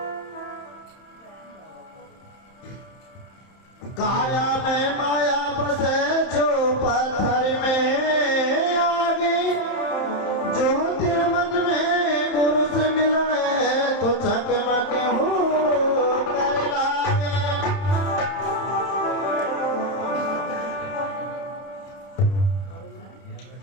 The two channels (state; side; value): late; right; 31 ms